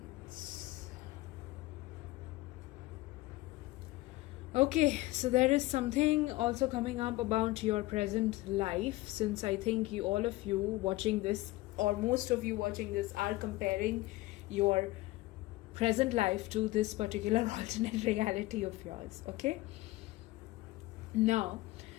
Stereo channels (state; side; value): quieter; right; 19.0 dB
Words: Okay, so there is something also coming up about your present life, since I think you, all of you watching this, or most of you watching this, are comparing your present life to this particular alternate reality of yours. Okay, now